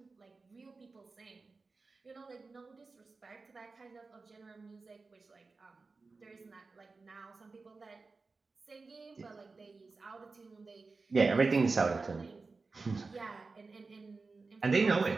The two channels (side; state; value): left; quieter; 4.0 dB